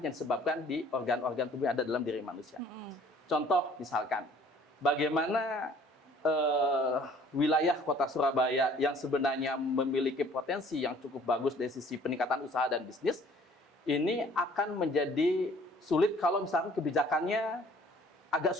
yang disebabkan di organ-organ tubuh yang ada dalam diri manusia. Contoh misalkan, bagaimana wilayah Kota Surabaya yang sebenarnya memiliki potensi yang cukup bagus dari sisi peningkatan usaha dan bisnis, ini akan menjadi sulit kalau misalkan kebijakannya agak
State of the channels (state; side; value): normal; both; correlation 0.55